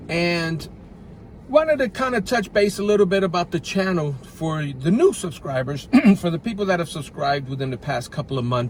and wanted to kind of touch base a little bit about the channel for the new subscribers, for the people that have subscribed within the past couple of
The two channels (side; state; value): both; identical; correlation 1.00